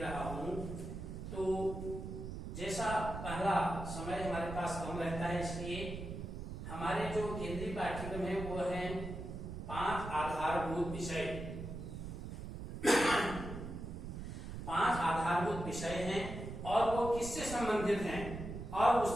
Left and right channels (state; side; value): noise; right; rumble, 7 dB below the sound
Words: रहा हूं। तो जैसा पहला समय हमारे पास कम रहता है, इसलिए हमारे जो केंद्रीय पाठ्यक्रम है वो है 5 आधारभूत विषय। 5 आधारभूत विषय हैं और वो किससे संबंधित हैं और